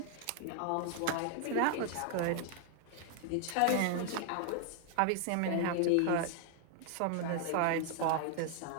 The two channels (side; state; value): both; different; correlation 0.00